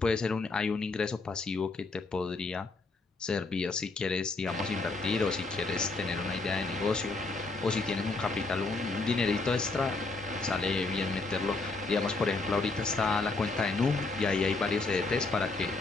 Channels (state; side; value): quieter; right; 3.6 dB